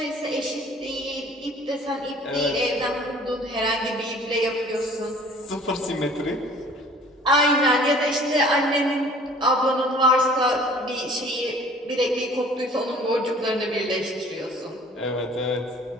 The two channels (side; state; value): both; normal; correlation 0.51